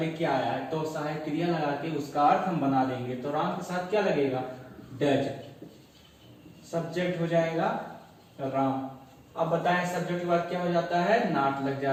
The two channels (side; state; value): both; identical; correlation 1.00